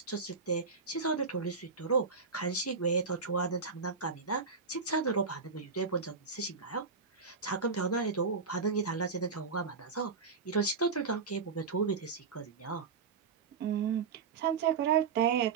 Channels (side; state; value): left; quieter; 5.1 dB